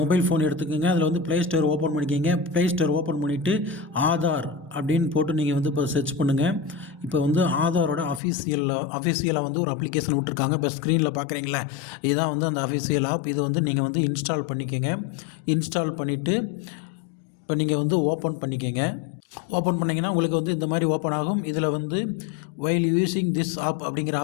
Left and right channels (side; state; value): right; drops out; at 8.2 s